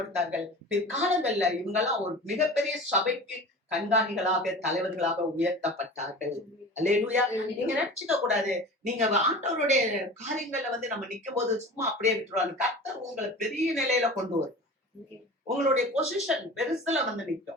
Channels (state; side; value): normal; both; correlation 0.36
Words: பிற்காலங்கள்ல இவங்கெல்லாம் ஒரு மிகப்பெரிய சபைக்கு கண்காணிகளாக, தலைவர்களாக உயர்த்தப்பட்டார்கள். அல்லேலூயா. நீங்க நினைச்சுக்க கூடாது, நீங்க ஆண்டவருடைய காரியங்கள்ல நம்ம நிக்கும் போது சும்மா அப்படியே விட்டுருவாங்க. கர்த்தர் உங்களை பெரிய நிலையில கொண்டு வரும். உங்களுடைய பொசிஷன் பெருசுல